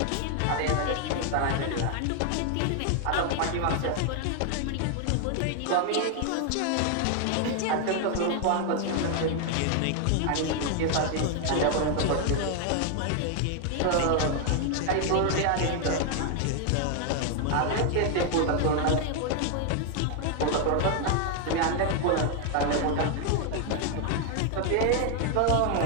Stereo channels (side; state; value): both; different; correlation 0.01